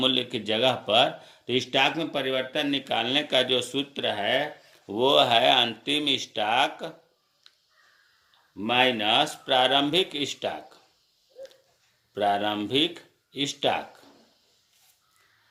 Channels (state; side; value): identical; both; correlation 1.00